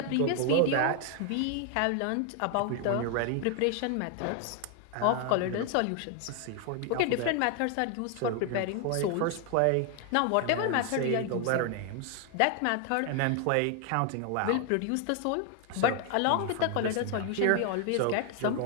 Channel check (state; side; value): different; both; correlation 0.00